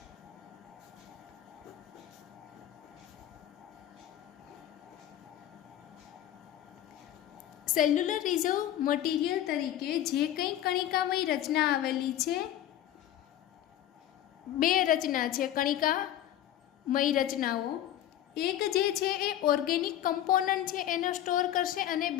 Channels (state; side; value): quieter; right; 12.0 dB